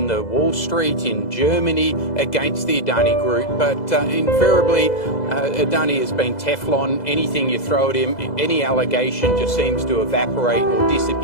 the Wall Street, in Germany against the Adani Group. But invariably, Adani has been Teflon. Anything you throw at him, any allegation just seems to evaporate or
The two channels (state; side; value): late; right; 2.0 ms